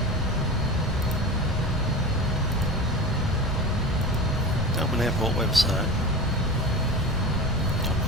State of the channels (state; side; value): normal; both; correlation 0.31